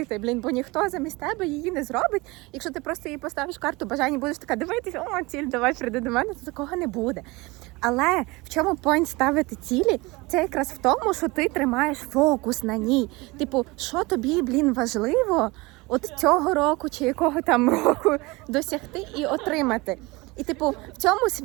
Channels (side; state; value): left; quieter; 23.5 dB